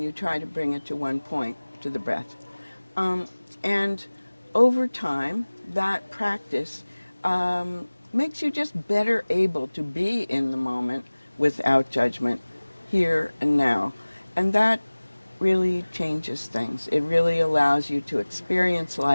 you try to bring it to one point, to the breath. And over time, that practice makes you just better able to be in the moment without judgment, here and now. And that really changes things. It really allows you to experience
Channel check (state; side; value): inverted; both; correlation -1.00